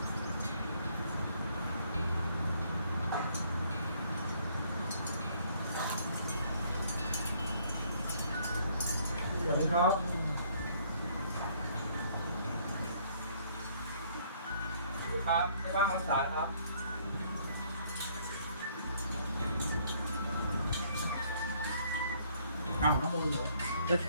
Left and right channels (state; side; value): inverted; both; correlation -0.64